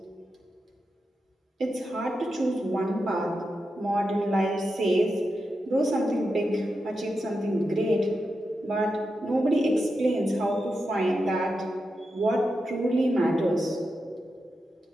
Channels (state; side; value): normal; both; correlation 0.88